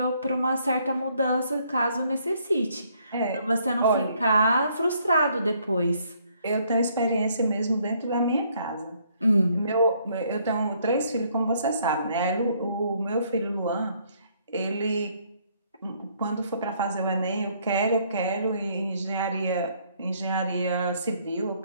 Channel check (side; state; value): both; inverted; correlation -0.67